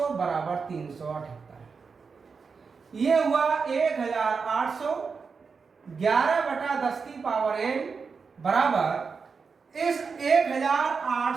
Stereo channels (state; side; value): quieter; left; 5.2 dB